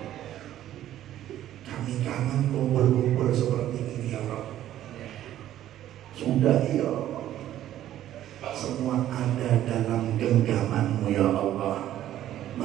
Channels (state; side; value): quieter; left; 12.5 dB